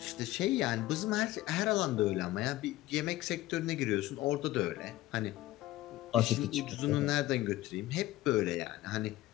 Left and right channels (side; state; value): right; quieter; 16.4 dB